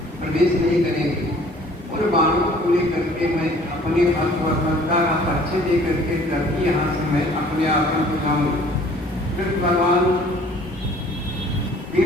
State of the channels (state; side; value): normal; both; correlation 0.53